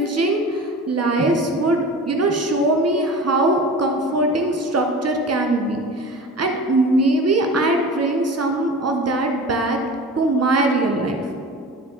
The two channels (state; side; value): normal; both; correlation 0.36